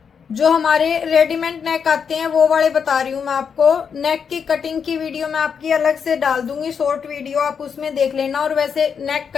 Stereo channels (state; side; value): quieter; right; 6.7 dB